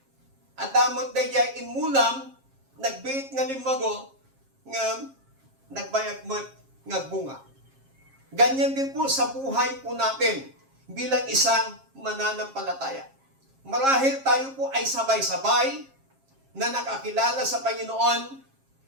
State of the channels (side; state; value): left; late; 7.4 ms